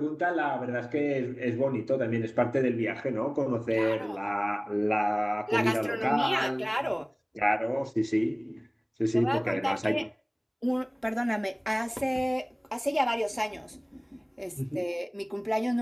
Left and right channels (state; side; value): identical; both; correlation 1.00